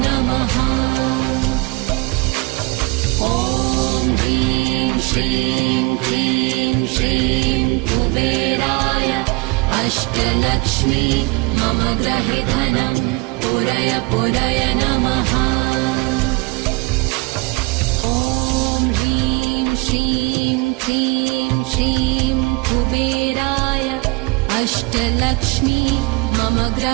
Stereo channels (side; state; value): left; quieter; 26.7 dB